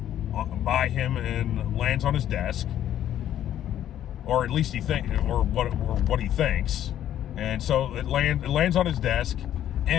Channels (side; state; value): right; quieter; 11.3 dB